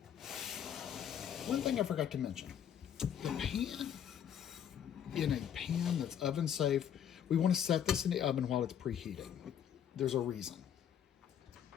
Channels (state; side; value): quieter; right; 9.2 dB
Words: One thing I forgot to mention, the pan, in a pan that's oven safe, we want to set this in the oven while it's preheating. There's a reason.